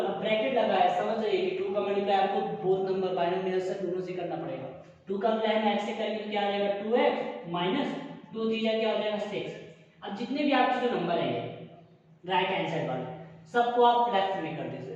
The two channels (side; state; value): both; identical; correlation 1.00